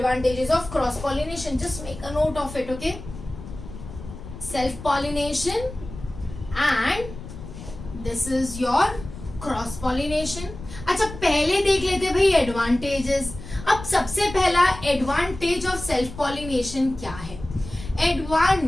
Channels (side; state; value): left; noise; rumble, 13 dB below the sound